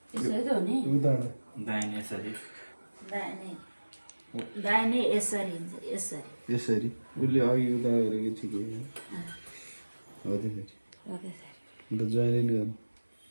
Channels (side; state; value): both; inverted; correlation -1.00